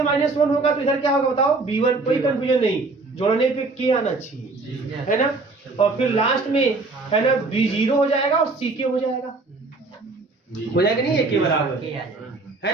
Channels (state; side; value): quieter; left; 3.6 dB